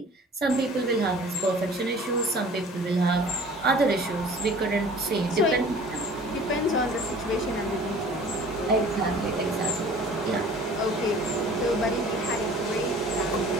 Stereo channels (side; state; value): both; normal; correlation 0.47